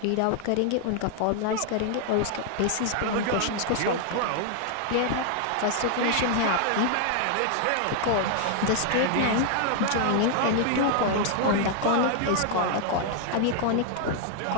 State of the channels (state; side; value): different; both; correlation 0.00